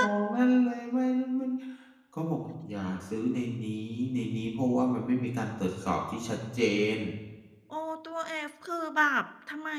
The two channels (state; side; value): identical; both; correlation 1.00